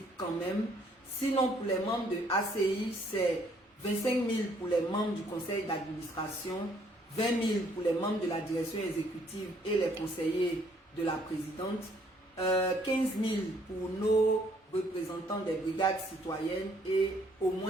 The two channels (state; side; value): normal; both; correlation 0.65